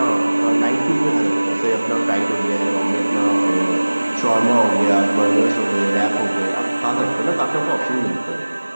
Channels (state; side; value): inverted; both; correlation -1.00